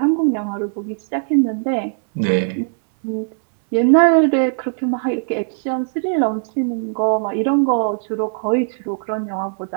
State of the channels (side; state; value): left; silent; digital silence